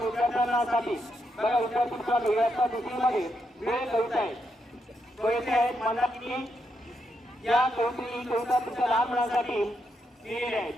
विद्यार्थ्यांसाठी बघा विद्यार्थी मित्रांनो इयत्ता दुसरीमध्ये वेळ कविता आहे. कविता आहेत मंदाकिनी. या कविता तुमच्या लहान मुलांसाठी लिहिलेल्या आहेत.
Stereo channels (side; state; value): both; normal; correlation 0.81